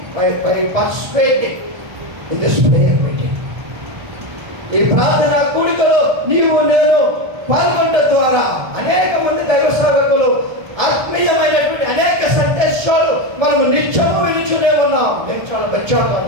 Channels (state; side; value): late; left; 1.3 ms